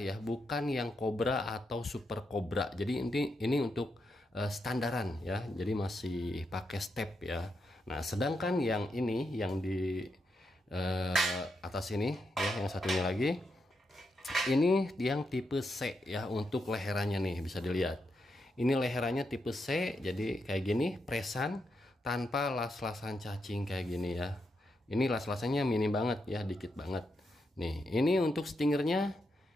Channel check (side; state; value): both; normal; correlation 0.83